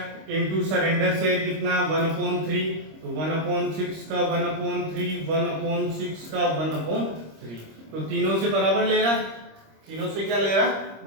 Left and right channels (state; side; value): late; left; 26 ms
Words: इंटू सरेंडर शेयर कितना 1/3, तो 1/6 का 1/3 1/6 का 1/3, तो तीनों से बराबर ले रहा, तीनों से क्या ले रहा